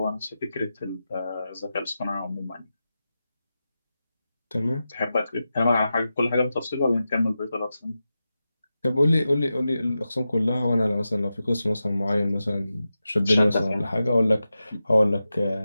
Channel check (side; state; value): both; inverted; correlation -0.92